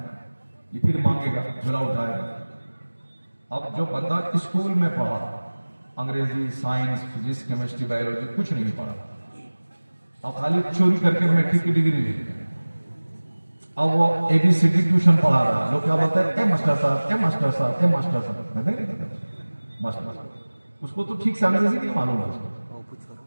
یہ پھر مانگے گا جھولا اٹھائے گا. اب جو بندہ اسکول میں پڑھا انگریزی سائنس فزکس کیمسٹری بایولوجی کچھ نہیں پڑھا, اب خالی چوری کر کے میٹرک کی ڈگری لے لی, اب وہ اے بی سی ڈی ٹیوشن پڑھا رہا, لوگ کیا بولتے ہیں اے ماسٹر صاحب اے ماسٹر صاحب اے ماسٹر صاحب, ماسٹر صاحب اس کو تو ٹھیک سے انگریزی نہیں معلوم ہے اس کو,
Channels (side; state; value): both; inverted; correlation -1.00